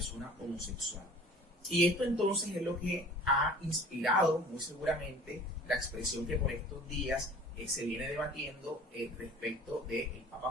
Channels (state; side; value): normal; both; correlation 0.45